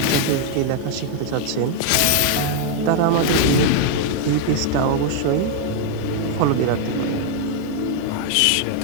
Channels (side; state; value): both; different; correlation 0.00